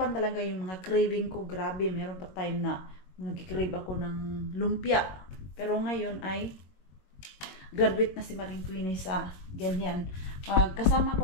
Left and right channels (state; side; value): late; right; 21 ms